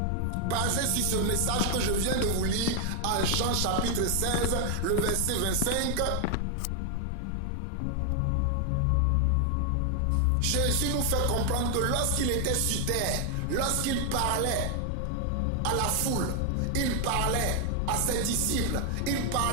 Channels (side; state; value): both; different; correlation 0.00